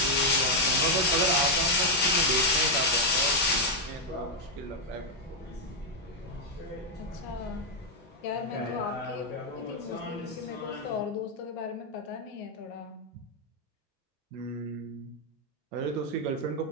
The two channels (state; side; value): normal; both; correlation -0.01